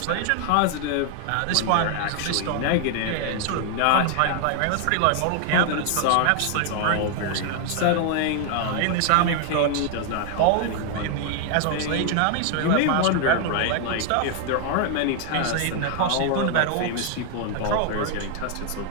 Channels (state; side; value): different; both; correlation 0.00